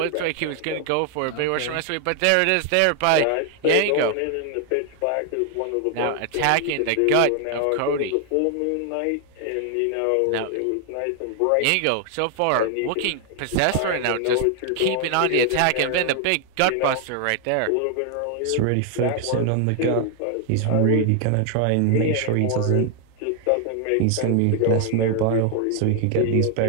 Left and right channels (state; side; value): different; both; correlation 0.00